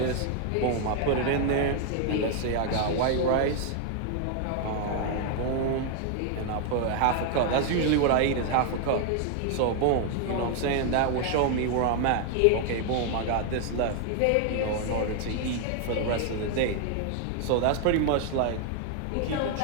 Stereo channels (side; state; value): both; different; correlation 0.00